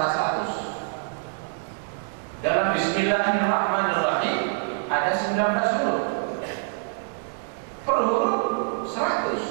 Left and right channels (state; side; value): silent; left; digital silence